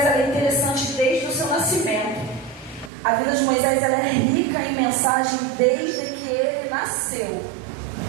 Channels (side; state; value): left; drops out; at 2.9 s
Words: é interessante desde o seu nascimento. A vida de Moisés ela é rica em mensagem desde que ele nasceu.